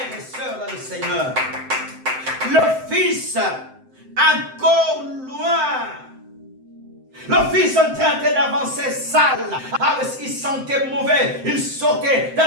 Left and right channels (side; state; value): left; late; 7.7 ms